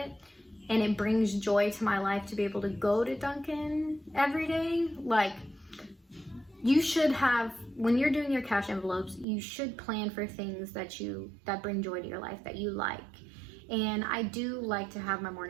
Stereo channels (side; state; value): left; drops out; at 9.2 s